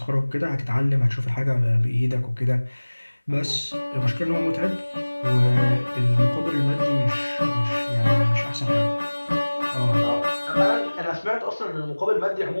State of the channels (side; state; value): both; inverted; correlation -1.00